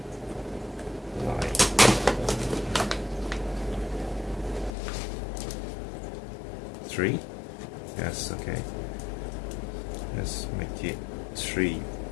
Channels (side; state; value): right; drops out; at 4.7 s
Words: like 3. Yes, okay. Let's make it 3.